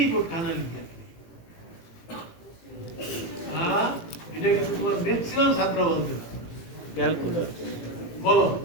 খানা লিখে হ্যাঁ এটা কিন্তু তোমার ম্যাক্সিমাম ছাত্র বলতে না ক্যালকুলাস বলো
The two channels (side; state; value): right; late; 18 ms